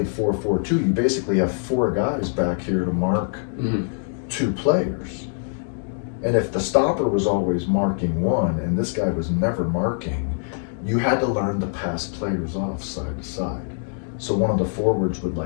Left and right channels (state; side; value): silent; right; digital silence